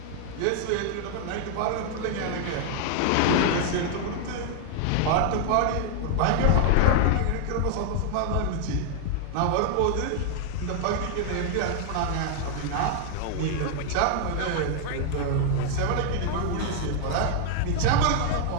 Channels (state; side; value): different; both; correlation 0.00